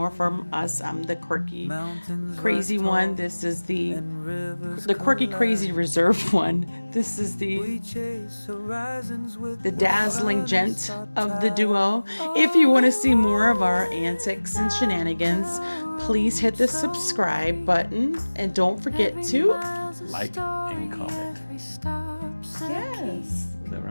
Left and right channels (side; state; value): both; inverted; correlation -1.00